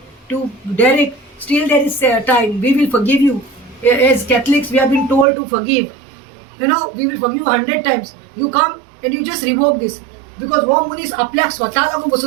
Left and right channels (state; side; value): drops out; left; at 5.2 s